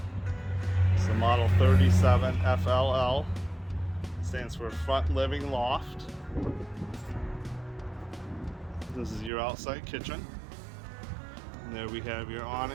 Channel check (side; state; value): left; drops out; at 9.3 s